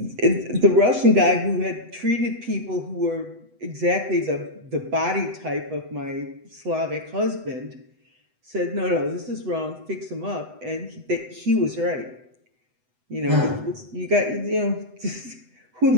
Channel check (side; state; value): left; late; 8.0 ms